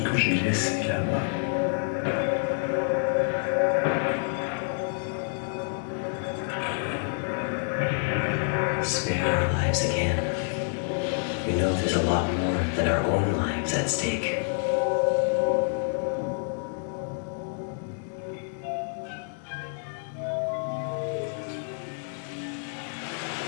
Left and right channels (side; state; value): right; silent; 59 dB below the other